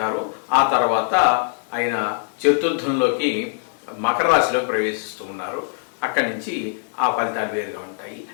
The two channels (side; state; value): right; silent; digital silence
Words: ఆ తర్వాత ఆయన చతుర్థంలోకి మకర రాశిలోకి ప్రవేశిస్తూ ఉన్నారు. అక్కడి నుంచి ఆ ఫలితాలు వేరుగా ఉంటాయి.